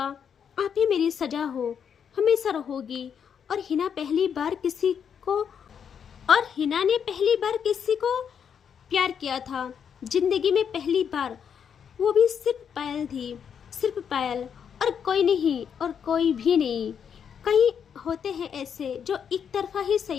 आप ही मेरी सजा हो, हमेशा रहोगी। और हिना ने पहली बार किसी को प्यार किया था, जिंदगी में पहली बार, वो भी सिर्फ पायल थी, सिर्फ पायल, और कोई नहीं, और कोई भी नहीं। कई होते हैं ऐसे जो एक तरफा ही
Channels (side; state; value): right; quieter; 7.6 dB